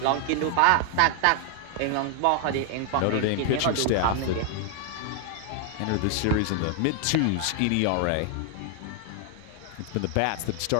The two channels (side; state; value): both; different; correlation 0.00